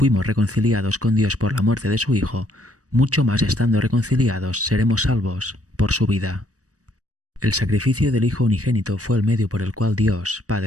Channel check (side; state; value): left; late; 0.66 ms